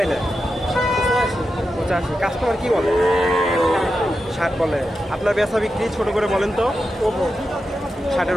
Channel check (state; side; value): normal; both; correlation 0.89